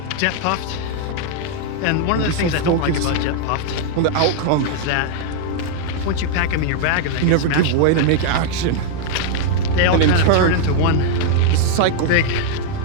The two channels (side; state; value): both; different; correlation 0.00